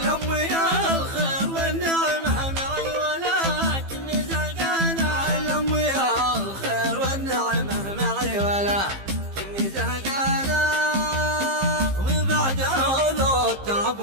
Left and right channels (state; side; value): late; left; 15 ms